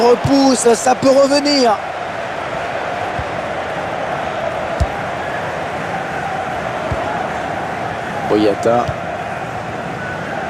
ça peut revenir. Boyata.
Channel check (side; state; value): both; identical; correlation 1.00